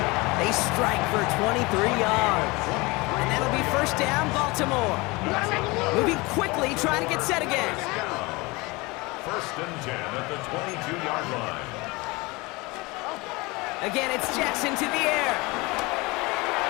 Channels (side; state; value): right; quieter; 24.3 dB